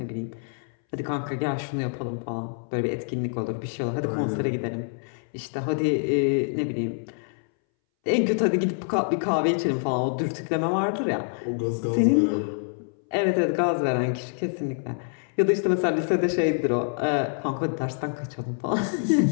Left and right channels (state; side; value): silent; right; 61 dB below the other